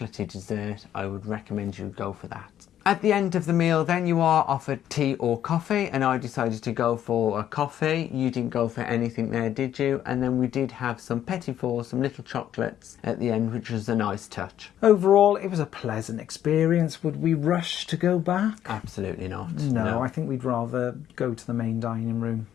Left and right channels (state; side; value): quieter; right; 10.9 dB